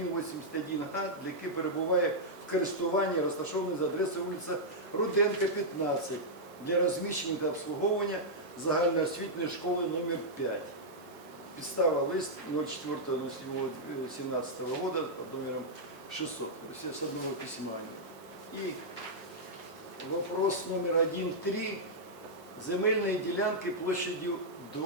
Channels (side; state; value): both; normal; correlation -0.08